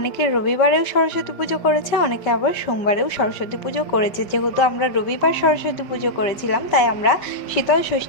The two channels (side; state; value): right; late; 5.3 ms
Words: রবিবারেও সরস্বতী পুজো করেছে, অনেকে আবার সোমবারেও সরস্বতী পুজো করেছে। যেহেতু আমরা রবিবার সরস্বতী পুজো করেছিলাম, তাই আমরা শীতল